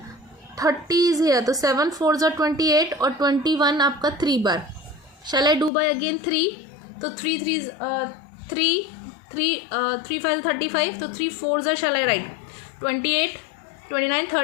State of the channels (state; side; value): drops out; right; at 5.7 s